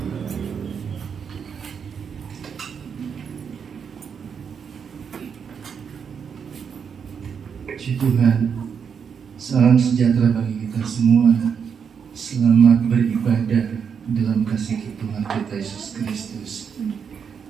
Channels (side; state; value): left; quieter; 6.8 dB